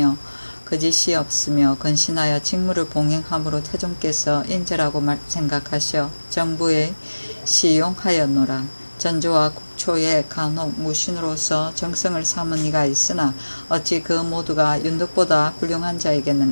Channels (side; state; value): both; inverted; correlation -1.00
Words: 거짓이 없으며 건신하여 직무를 봉행함으로 태종께서 인재라고 생각하셔 정부에 시용하였노라. 전조와 국초의 간혹 무신으로서 정성을 삼은 이가 있으나 어찌 그 모두가 윤덕보다 훌륭한